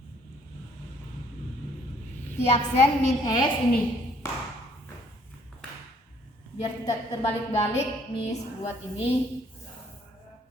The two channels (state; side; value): normal; both; correlation 0.62